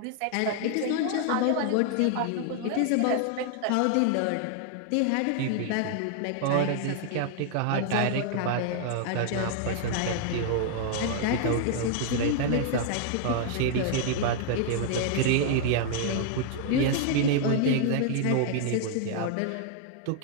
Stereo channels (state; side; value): different; both; correlation 0.00